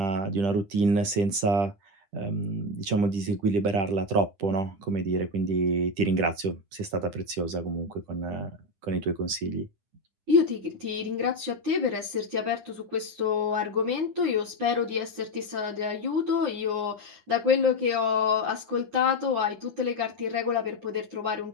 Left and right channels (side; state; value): left; late; 10 ms